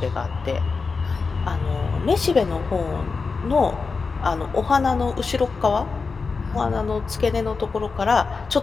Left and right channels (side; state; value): right; quieter; 4.6 dB